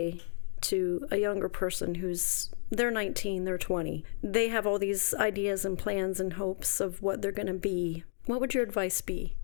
to a younger person they're 19, they're 20, they have all these ideas and plans and hopes of what they're going to be? What would your advice be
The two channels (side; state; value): right; silent; digital silence